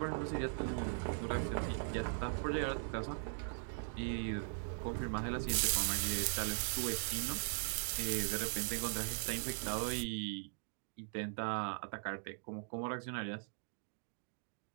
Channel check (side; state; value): left; silent; digital silence